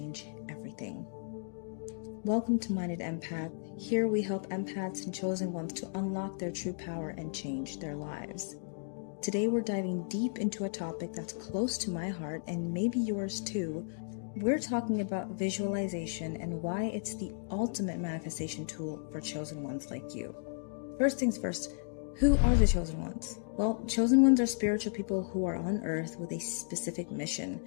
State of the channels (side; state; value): right; silent; digital silence